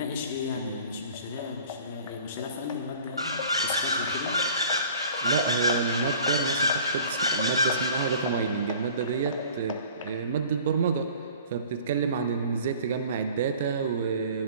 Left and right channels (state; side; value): inverted; both; correlation -0.47